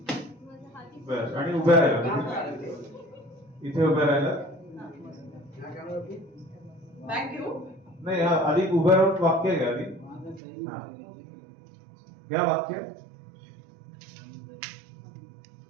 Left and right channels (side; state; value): left; drops out; at 10.4 s